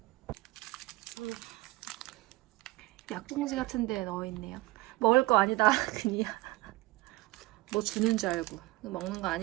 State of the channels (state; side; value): quieter; left; 19.9 dB